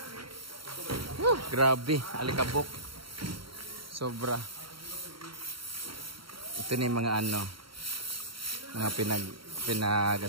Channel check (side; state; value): left; late; 0.74 ms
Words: Grabe, alikabok. Sobra. Ito na yung mga ano. Mga